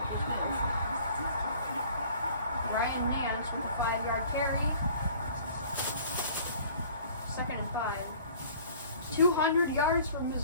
Ryan Nance with a 5-yard carry. Second and 5. 200 yards for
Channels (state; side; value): inverted; both; correlation -0.50